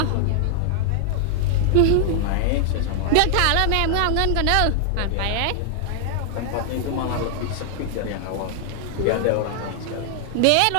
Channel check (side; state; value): both; different; correlation 0.00